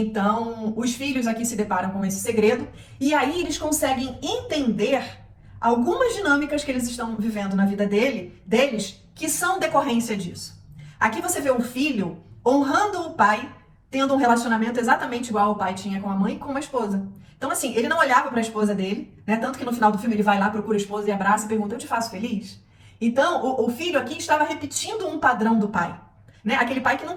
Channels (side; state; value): both; identical; correlation 1.00